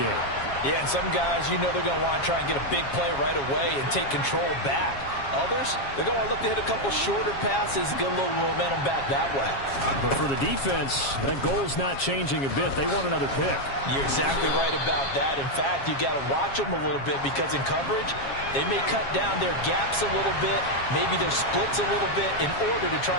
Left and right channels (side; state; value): right; late; 7.3 ms